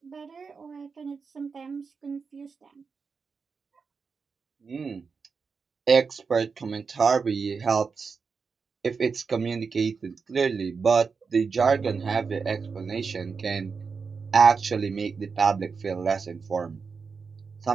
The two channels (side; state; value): left; quieter; 5.2 dB